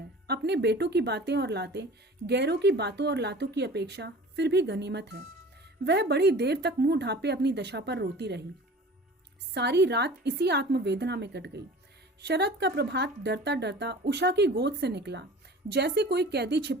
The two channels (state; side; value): normal; both; correlation 0.41